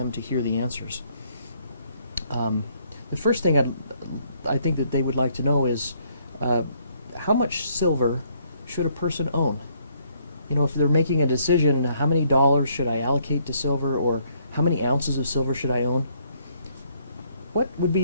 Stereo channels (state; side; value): inverted; both; correlation -0.68